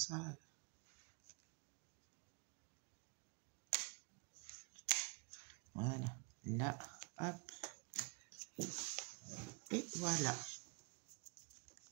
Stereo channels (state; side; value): quieter; left; 33.3 dB